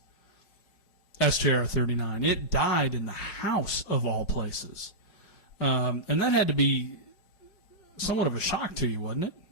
SJR 39. It died in the House of all places, and that had to be somewhat of a shock to you, wasn't it?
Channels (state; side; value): late; right; 5.6 ms